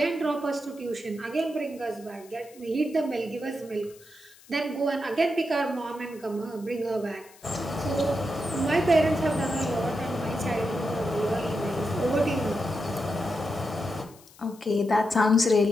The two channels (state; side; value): noise; left; hiss, 24 dB below the sound